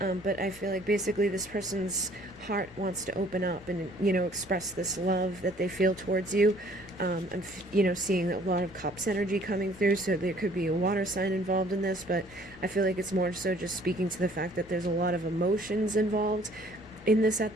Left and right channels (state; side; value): noise; right; rumble, 27 dB below the sound